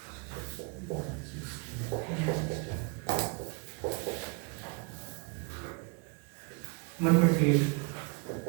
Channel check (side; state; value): left; quieter; 33.0 dB